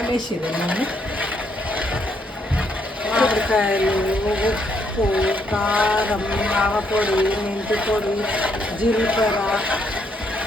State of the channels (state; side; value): normal; both; correlation 0.73